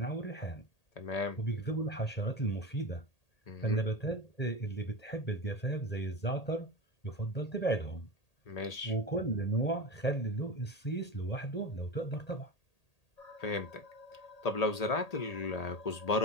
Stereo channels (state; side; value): late; right; 1.8 ms